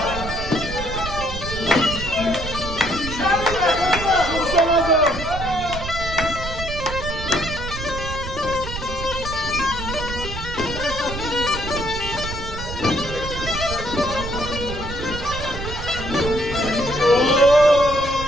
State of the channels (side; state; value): right; noise; rumble, 7 dB below the sound